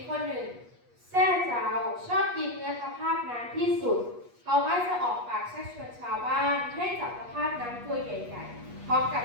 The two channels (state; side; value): late; left; 8.3 ms